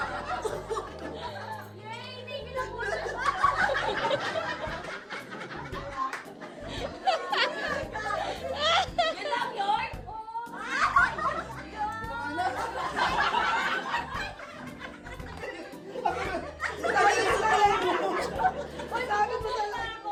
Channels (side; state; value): both; identical; correlation 1.00